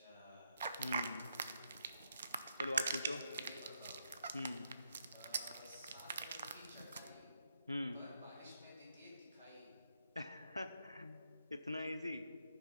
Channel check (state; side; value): inverted; both; correlation -0.79